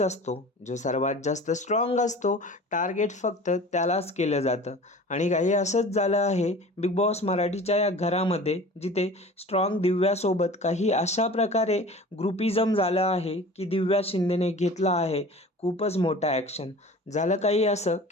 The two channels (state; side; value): normal; both; correlation 0.41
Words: असतो. जो सर्वात जास्त स्ट्रॉंग असतो, टार्गेट फक्त त्यालाच केलं जातं. आणि काही असंच झालं आहे बिग बॉस मराठीच्या या घरामध्ये, जिथे स्ट्रॉंग दिव्यासोबत काही अशा प्रकारे ग्रुपिझम झालं आहे की दिव्या शिंदेने घेतला आहे खूपच मोठा ॲक्शन. झालं काही असं